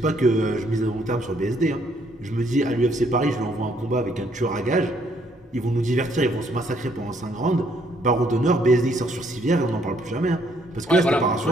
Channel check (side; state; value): both; normal; correlation 0.68